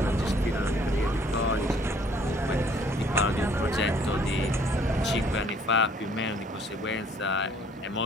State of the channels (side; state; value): both; normal; correlation 0.60